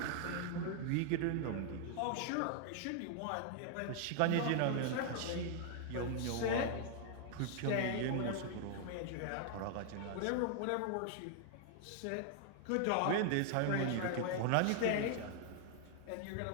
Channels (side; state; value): both; different; correlation 0.00